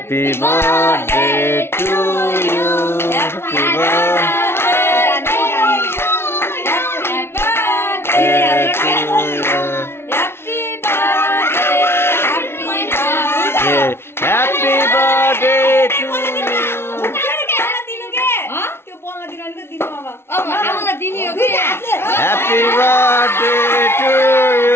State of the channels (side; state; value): right; late; 0.12 ms